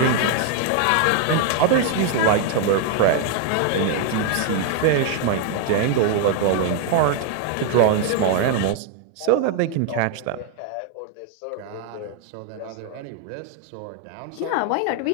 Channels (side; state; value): both; different; correlation 0.00